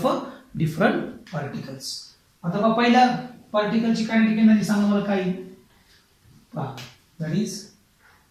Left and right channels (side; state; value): both; identical; correlation 1.00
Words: a different particles. आता पहा पहिल्या पार्टिकलची कायनेटिक एनर्जी सांगा मला काय. That is